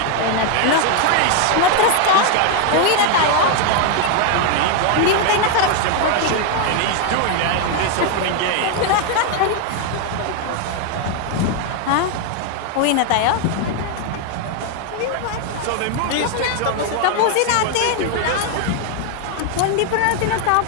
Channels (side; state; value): both; different; correlation 0.01